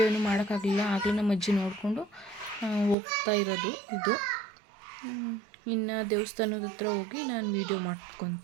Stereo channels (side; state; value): left; drops out; at 3.0 s